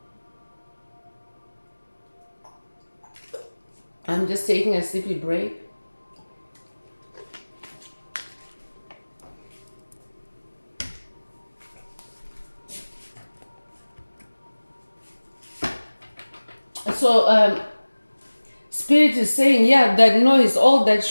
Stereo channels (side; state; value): both; inverted; correlation -1.00